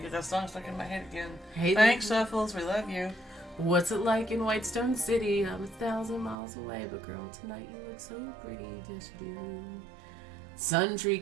that song stuck in my head again. Hey Thanks, there. Shuffles. We love you. What's it like in Whitestone City? I'm 1,000 miles away, but girl, tonight you look so pretty, just you. Sun tree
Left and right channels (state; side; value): drops out; left; at 6.4 s